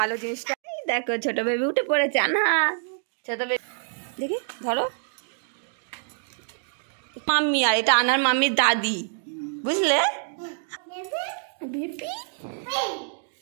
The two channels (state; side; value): silent; left; digital silence